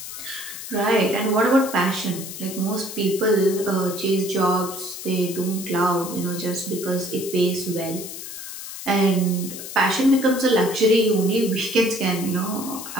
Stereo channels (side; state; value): left; noise; hiss, 10 dB below the sound